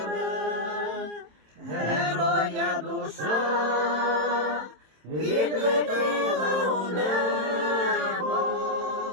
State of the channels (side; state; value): left; late; 27 ms